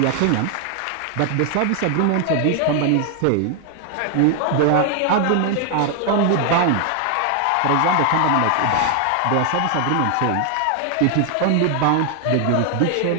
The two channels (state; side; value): different; both; correlation 0.00